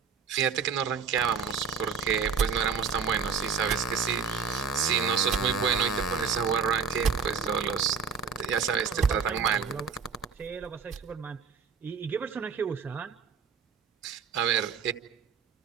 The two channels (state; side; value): quieter; left; 5.9 dB